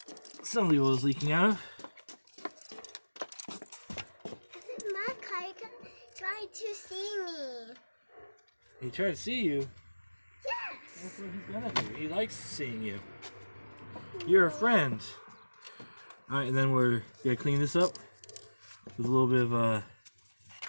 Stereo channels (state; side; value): inverted; both; correlation -1.00